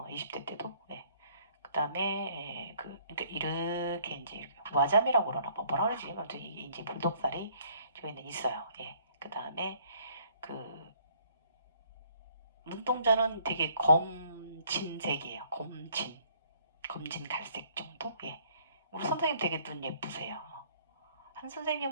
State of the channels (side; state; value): both; inverted; correlation -0.62